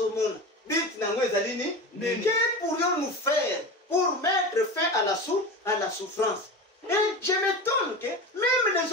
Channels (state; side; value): normal; both; correlation 0.28